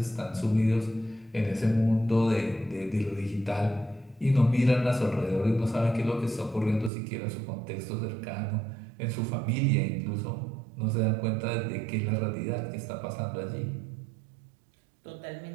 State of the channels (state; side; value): drops out; left; at 6.9 s